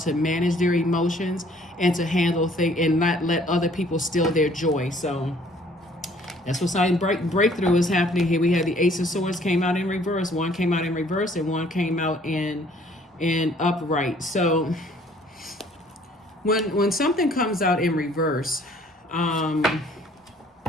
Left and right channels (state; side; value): normal; both; correlation 0.58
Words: manage their emotions and to handle things and not let other people steal their joy. So that's what sign breakthrough is happening here. We had the Ace of Swords came out in reverse. One came out in reverse and one came out in upright. So when something comes out in reverse,